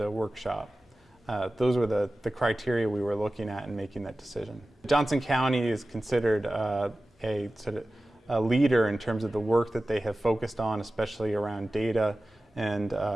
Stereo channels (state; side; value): normal; both; correlation 0.96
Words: workshop. Those were the criteria we were looking at in making that decision. Johnson County is considered a leader in terms of the work that they have focused on, especially around data and